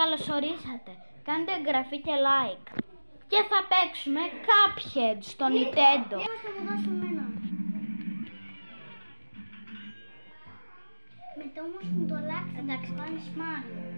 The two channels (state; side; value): inverted; both; correlation -1.00